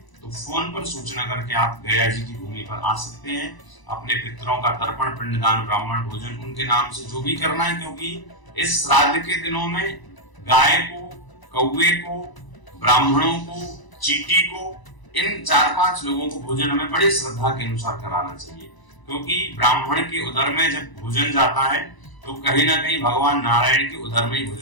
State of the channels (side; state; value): right; late; 1.0 ms